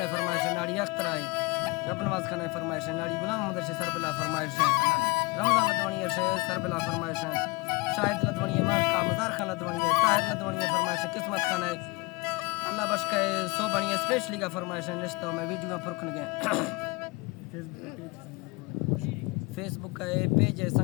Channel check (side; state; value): right; quieter; 25.2 dB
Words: है फरमाइश है नाड़ी अख्तर है रब नवाज खान है फरमाइश है नाड़ी गुलाम मोहम्मद से सरबला फरमाइश है रमजान लदवानी से सरबला फरमाइश है शाहिद लदवानी है मार का मजार खान लदवानी है ताहिर लदवानी है फरमाइश है किस्मत खान है अल्लाह बश का सो बढ़िया स्पेशली का फरमाइश है निश्तो में वीडियो में फुरखन गए फेसबुक का पेज है